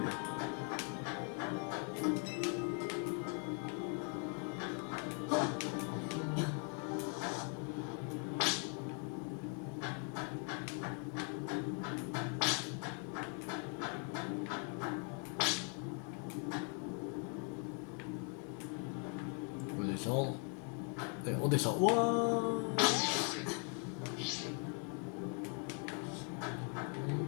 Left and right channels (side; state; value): right; quieter; 39.5 dB